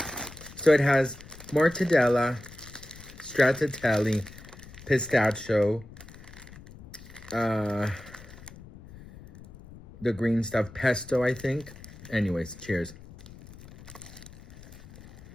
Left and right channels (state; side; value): noise; left; rumble, 18 dB below the sound